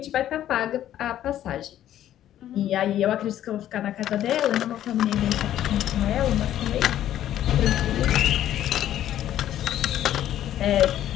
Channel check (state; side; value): quieter; right; 11.9 dB